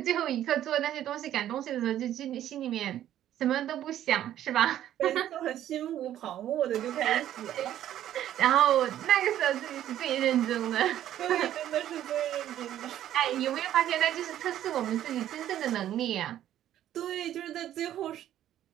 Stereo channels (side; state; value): left; quieter; 11.8 dB